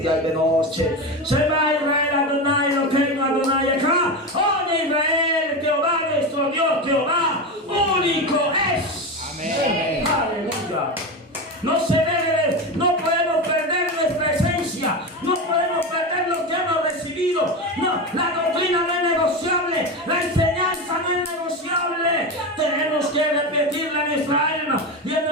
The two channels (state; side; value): normal; both; correlation 0.19